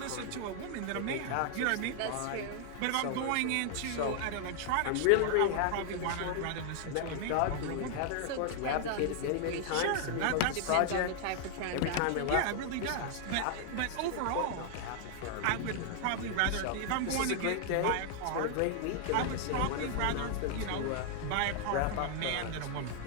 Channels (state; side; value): different; both; correlation 0.00